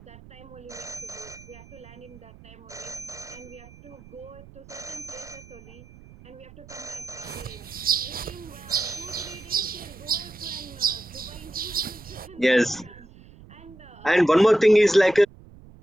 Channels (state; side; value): noise; right; rumble, 20 dB below the sound